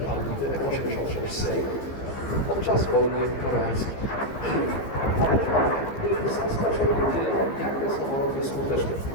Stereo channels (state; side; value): late; right; 15 ms